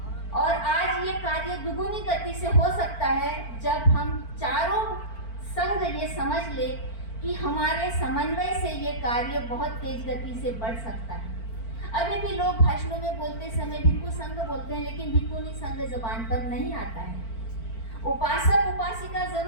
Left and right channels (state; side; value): late; right; 4.4 ms